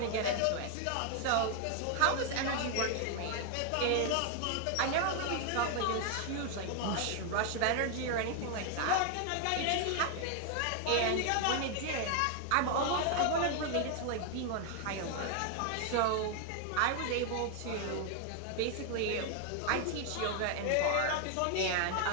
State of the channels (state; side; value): different; both; correlation 0.00